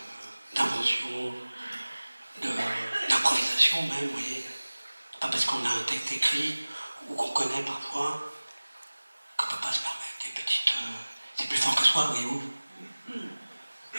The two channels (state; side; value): inverted; both; correlation -1.00